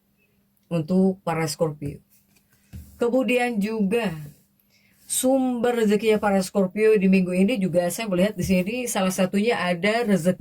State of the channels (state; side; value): identical; both; correlation 1.00